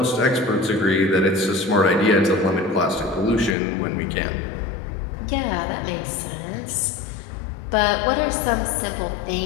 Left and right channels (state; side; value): drops out; right; at 3.6 s